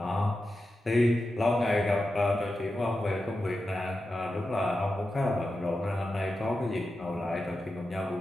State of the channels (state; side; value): normal; both; correlation 0.91